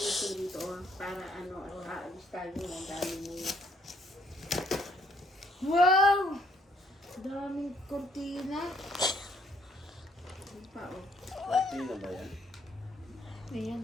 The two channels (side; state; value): both; normal; correlation 0.67